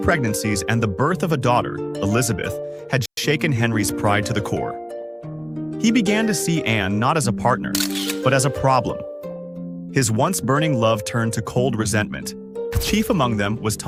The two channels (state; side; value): identical; both; correlation 1.00